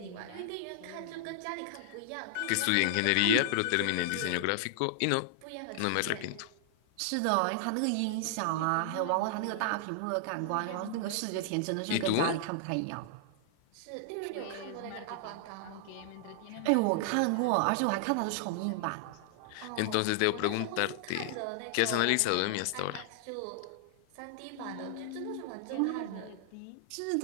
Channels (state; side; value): different; both; correlation -0.01